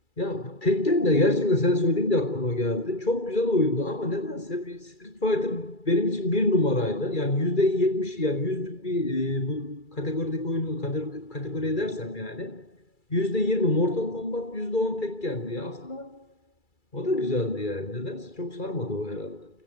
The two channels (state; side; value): late; right; 2.3 ms